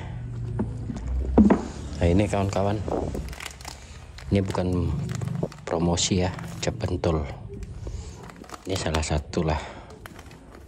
Nah ini kawan-kawan, ini bukan promosi ya, cap pentul. Ini salah satu lah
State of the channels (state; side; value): identical; both; correlation 1.00